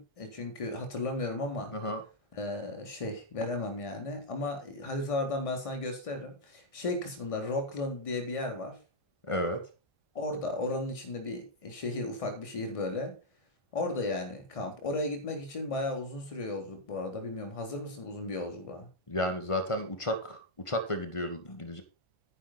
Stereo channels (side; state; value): right; late; 1.6 ms